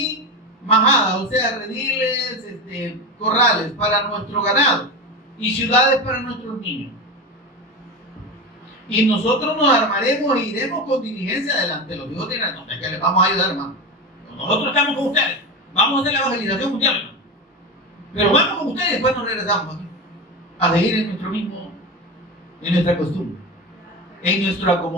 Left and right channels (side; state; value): both; normal; correlation 0.22